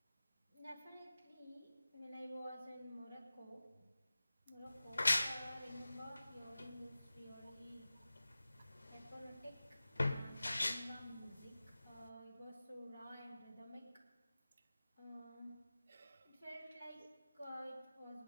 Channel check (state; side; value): inverted; both; correlation -0.96